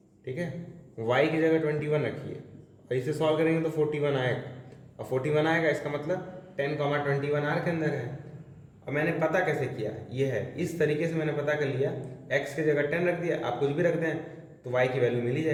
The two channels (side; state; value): both; identical; correlation 1.00